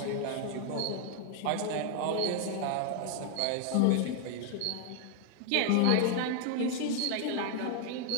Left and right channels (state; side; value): different; both; correlation 0.00